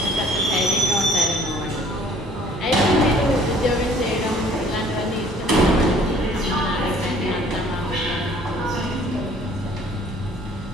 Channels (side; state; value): both; normal; correlation 0.56